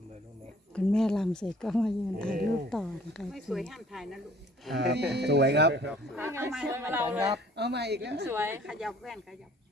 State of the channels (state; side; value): normal; both; correlation 0.54